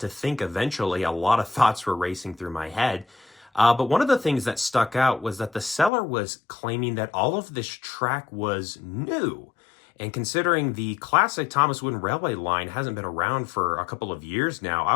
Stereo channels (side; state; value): right; drops out; at 5.9 s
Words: to think eventually. A lot of thoughts were racing through my head. But one of the things that stuck out was that the seller was claiming that all of this track was new. And considering the classic Thomas Wooden Railway line hasn't been around for a couple of years now, I